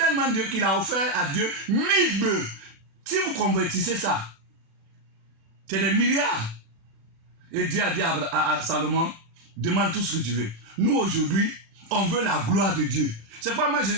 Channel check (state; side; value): late; left; 36 ms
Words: Dieu qu'il a offert à Dieu 1000 bœufs. Si vous convertissez ça, c'est des milliards. Et Dieu a dit à Salomon, demande tout ce que tu veux. Nous aujourd'hui, on veut la gloire de Dieu. C'est pourquoi moi je